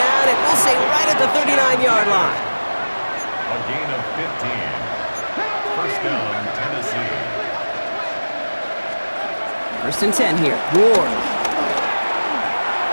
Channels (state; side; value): inverted; both; correlation -1.00